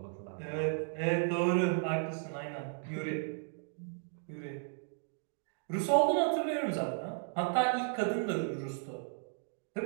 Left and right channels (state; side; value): silent; left; 55 dB below the other